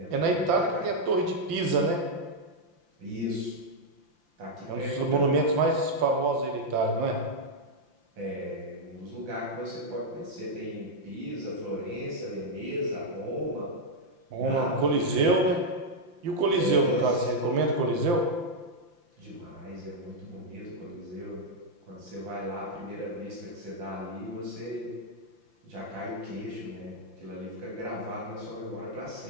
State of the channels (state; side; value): late; left; 5.8 ms